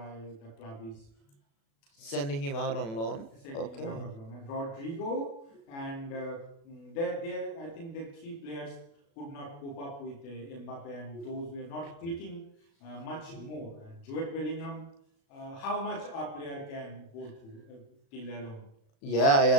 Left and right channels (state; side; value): late; right; 36 ms